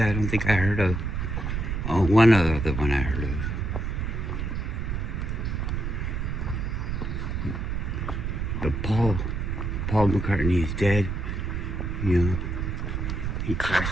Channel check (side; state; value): right; noise; rumble, 2 dB below the sound